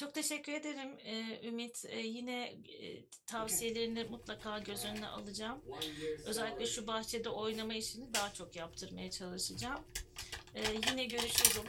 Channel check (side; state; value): both; identical; correlation 1.00